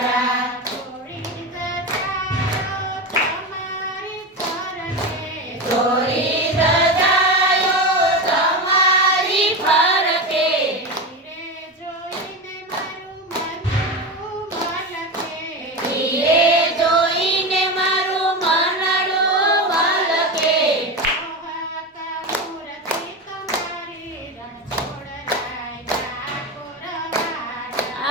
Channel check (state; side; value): normal; both; correlation 0.21